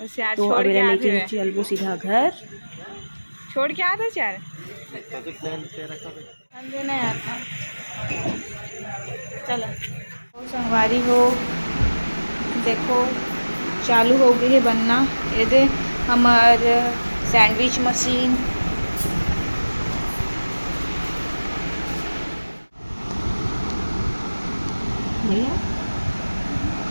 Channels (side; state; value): both; inverted; correlation -1.00